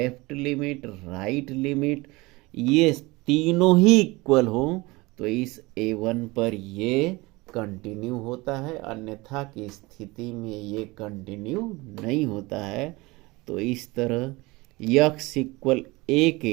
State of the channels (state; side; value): quieter; left; 22.8 dB